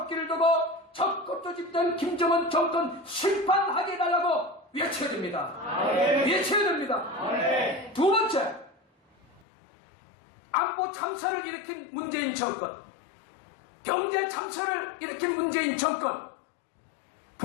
두고 적극 집단 김정은 정권 심판하게 해달라고 외쳐야 됩니다. 아멘. 외쳐야 됩니다. 아멘. 두 번째, 안보 참사를 일으킨 문재인 정권, 경제 참사를 일으킨 문재인 정권,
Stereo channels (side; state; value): right; drops out; at 9.4 s